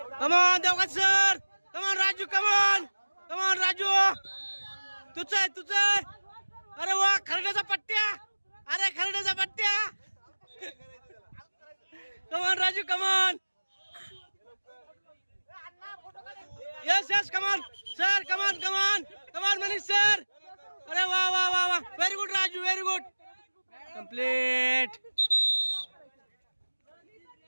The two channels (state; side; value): inverted; both; correlation -1.00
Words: come on Devgat sir, come on Raju, come on come on Raju, तुझं आहे तुझं आहे. अरे वा, खरड्याचा पट्ट्या, अरे खरड्याचा पट्ट्या. Come on Raju, come on. Yes yes, come on sir, come on come on come on Manish sir. अरे वा वा वा वा, very good Raju, very good. Complete.